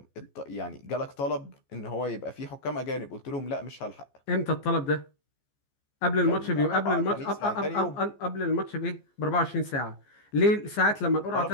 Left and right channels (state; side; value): late; right; 14 ms